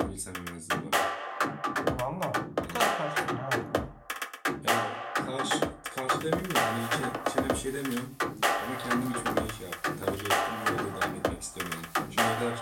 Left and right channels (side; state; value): both; identical; correlation 1.00